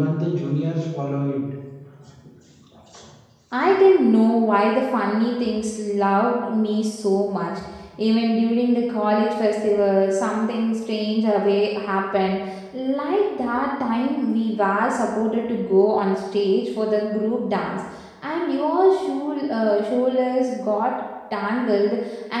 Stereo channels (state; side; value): identical; both; correlation 1.00